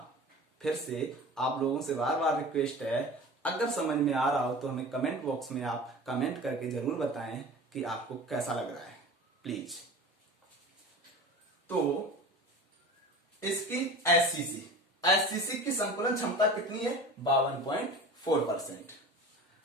फिर से आप लोगों से बार बार रिक्वेस्ट है, अगर समझ में आ रहा हो तो हमें कमेंट बॉक्स में आप कमेंट करके जरूर बताएं कि आपको कैसा लग रहा है, प्लीज। तो इसकी एससीसी, एससीसी की संकुलन क्षमता कितनी है? 52.4%।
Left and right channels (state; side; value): normal; both; correlation 0.36